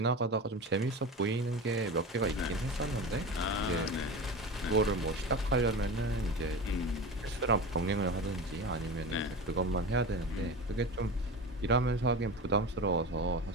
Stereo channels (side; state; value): both; normal; correlation 0.27